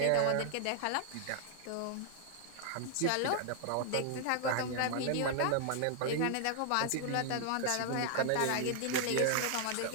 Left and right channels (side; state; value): both; different; correlation 0.00